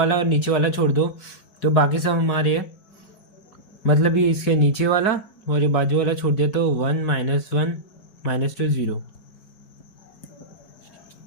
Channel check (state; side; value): late; right; 5.0 ms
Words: और नीचे वाला छोड़ दो, तो बाकी सब हमारे है। मतलब ये इसके नीचे वाला और ये बाजू वाला छोड़ दिया, तो 1 -1 -2 0।